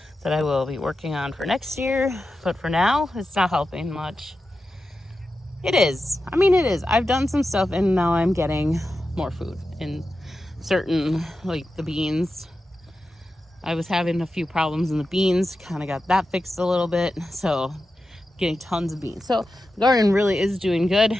that I will be working on for next year, but for now it's not helping much. It is. I mean, it is. I've done some stuff and now I'm getting more food in certain, like the beans. I was having a few problems in the beans, kind of got that fixed a little bit. So getting tons of beans. So the garden really is doing good.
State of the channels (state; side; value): normal; both; correlation 0.91